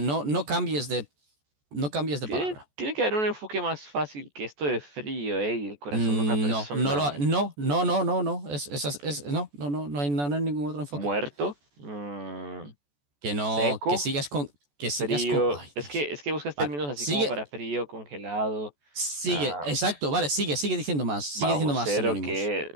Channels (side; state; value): left; late; 14 ms